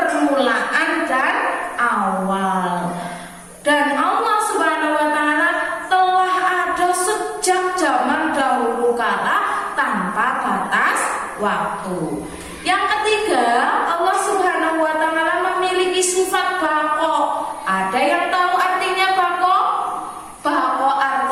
dan awal. Dan Allah Subhanahu wa ta'ala telah ada sejak zaman dahulu kala tanpa batas waktu. Yang ketiga, Allah Subhanahu wa ta'ala memiliki sifat baqo. Ada yang tahu artinya baqo? Baqo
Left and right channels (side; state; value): both; identical; correlation 1.00